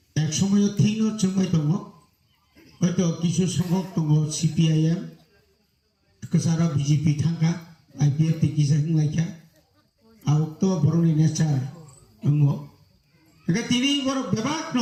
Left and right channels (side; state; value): both; identical; correlation 1.00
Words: এক সময় থিনো চুমাই দङ হয়তো কিছু সংখ্যক দङ সিপিআইএম কেসারা বিজেপি থাকা আইপিএফ টিকিসা লাইকা আউক্ত বরনি নেচার দङ একা তিনি বড় বেবাক ন